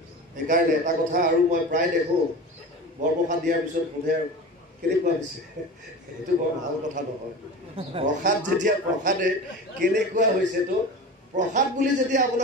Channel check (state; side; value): normal; both; correlation 0.32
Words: সেইকাৰণে এটা কথা আৰু মই প্ৰায় দেখোঁ, বৰপ্ৰসাদ দিয়াৰ পিছত সোধে আৰু কেনেকুৱা হৈছে, সেইটো বৰ ভাল কথা নহয়। প্ৰসাদ যেতিয়া প্ৰসাদে কেনেকুৱা হৈছেতো, প্ৰসাদ বুলি যেতিয়া